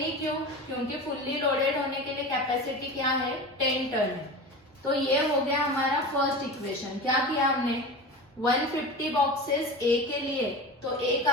ही क्यों, क्योंकि फुल्ली लोडेड होने के लिए कैपेसिटी क्या है, 10 टन है। तो ये हो गया हमारा फर्स्ट इक्वेशन। क्या किया हमने, 150 बॉक्सेस ए के लिए, तो ए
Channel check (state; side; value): normal; both; correlation 0.30